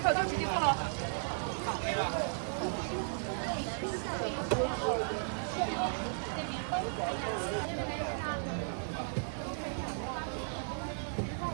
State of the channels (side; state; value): left; silent; digital silence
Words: 就直接做了。好。